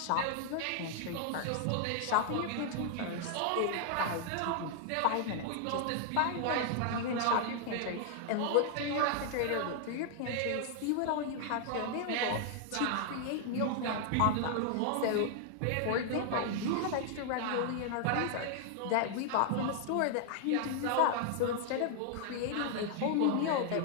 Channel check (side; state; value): both; different; correlation 0.00